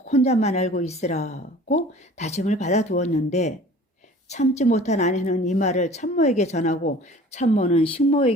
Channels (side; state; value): both; normal; correlation 0.46